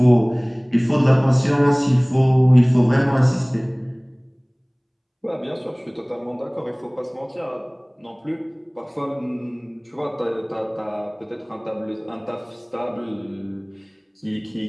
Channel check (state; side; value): identical; both; correlation 1.00